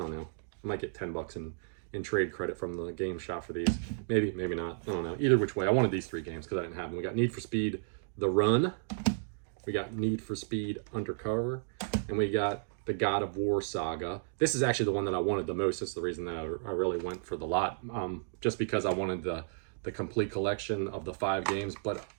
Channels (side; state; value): left; silent; digital silence